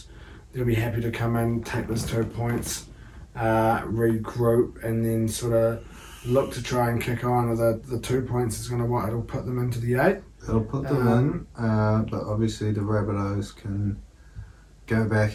They'll be happy to come in, take those 2 points, regroup, and then sort of look to try and kick on. The 2 points is going to it'll put them into the 8. It'll put them in, but obviously the Rabbitohs can go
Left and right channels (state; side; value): identical; both; correlation 1.00